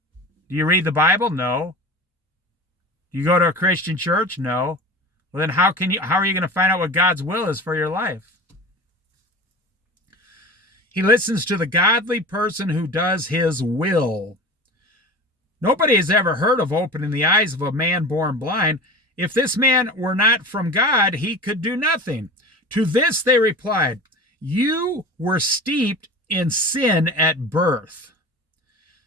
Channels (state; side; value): normal; both; correlation 0.34